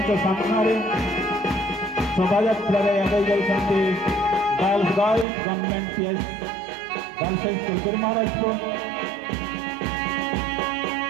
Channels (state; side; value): drops out; left; at 5.2 s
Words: ସାମ୍ନାରେ ଶୋଭାଯାତ୍ରାରେ ଆଗେଇ ଯାଉଛନ୍ତି girls government PS girls high school Biramarajpur.